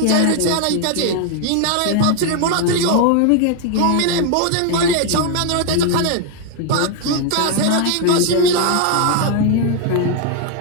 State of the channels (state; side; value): different; both; correlation 0.01